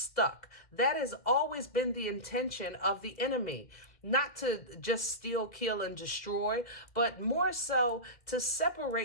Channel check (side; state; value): right; late; 2.1 ms